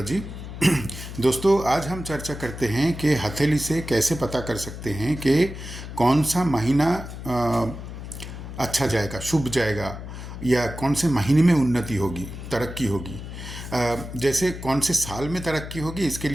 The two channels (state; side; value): noise; left; hum, 10 dB below the sound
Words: दोस्तों, आज हम चर्चा करते हैं कि हथेली से कैसे पता कर सकते हैं कि कौन सा महीना अच्छा जाएगा, शुभ जाएगा, या कौन से महीने में उन्नति होगी, तरक्की होगी। जैसे कौन से साल में तरक्की होगी, इसके